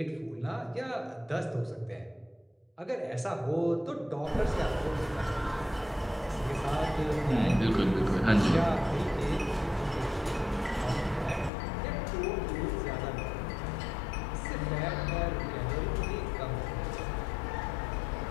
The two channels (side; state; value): right; drops out; at 11.5 s